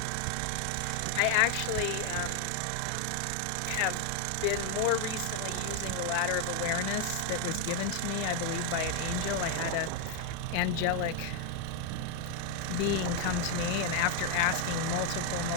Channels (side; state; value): both; different; correlation 0.00